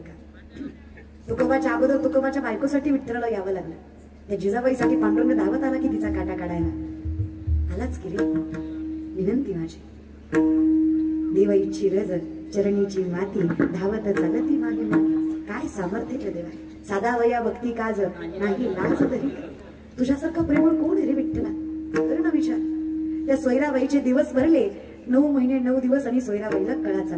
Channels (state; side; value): identical; both; correlation 1.00